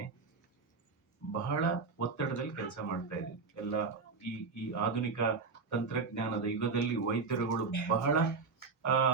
ಬಹಳ ಒತ್ತಡದಲ್ಲಿ ಕೆಲಸ ಮಾಡ್ತಾ ಇದೆ ಎಲ್ಲ. ಈ ಆಧುನಿಕ ತಂತ್ರಜ್ಞಾನದ ಯುಗದಲ್ಲಿ ವೈದ್ಯರುಗಳು ಬಹಳ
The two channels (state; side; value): quieter; left; 4.6 dB